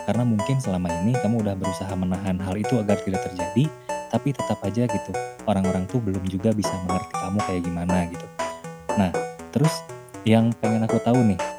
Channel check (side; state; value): both; identical; correlation 1.00